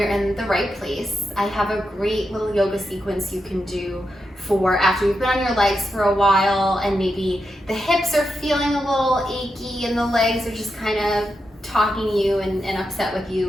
in the right place. I have a great little yoga sequence you can do for after you've been on your legs for a while and maybe the hips are feeling a little achy and the legs are just kind of talking to you and upset with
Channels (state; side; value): normal; both; correlation 0.86